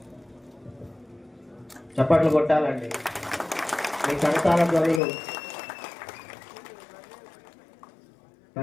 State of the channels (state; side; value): drops out; right; at 5.0 s